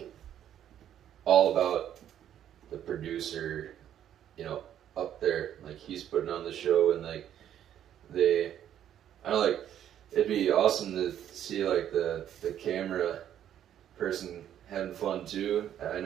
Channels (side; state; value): left; quieter; 10.5 dB